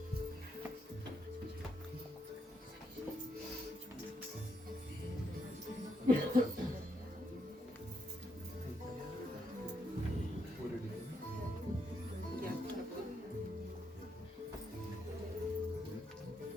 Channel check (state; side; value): normal; both; correlation 0.78